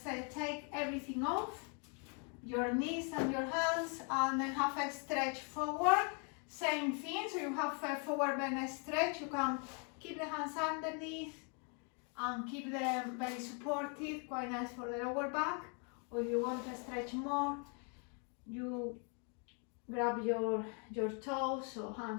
take everything off, your knees and your hands, and then have a stretch forward. Same thing, so you have a forward bend stretch. You can keep the hands underneath and keep them very supported, quite nice for the lower back. Or if you want to stretch more, you grab your toes or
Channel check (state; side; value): quieter; right; 38.1 dB